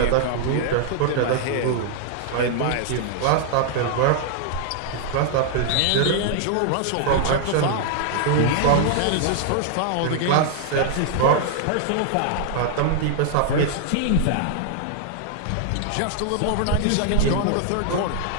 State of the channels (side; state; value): both; different; correlation 0.00